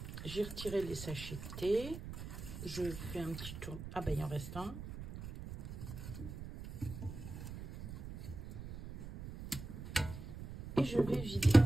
J'ai retiré les sachets de thé. Je fais un petit tour. Ah ben, il en reste un. Et je vais vider.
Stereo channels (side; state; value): right; noise; rumble, 10 dB below the sound